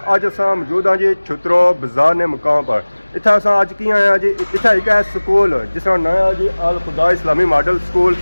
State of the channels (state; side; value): inverted; both; correlation -1.00